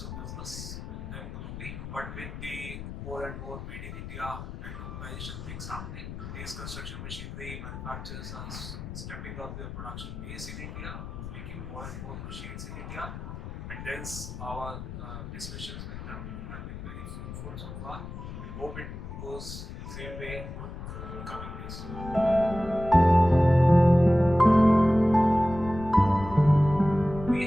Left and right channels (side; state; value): left; noise; rumble, 9 dB below the sound